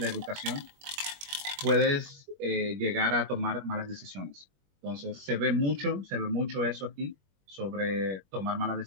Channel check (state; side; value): late; left; 21 ms